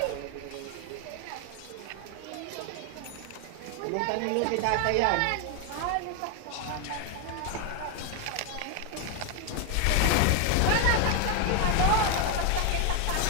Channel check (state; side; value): different; both; correlation 0.01